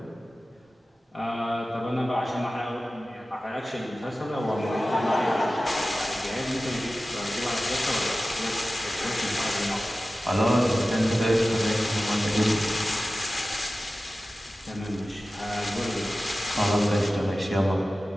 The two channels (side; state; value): both; normal; correlation 0.96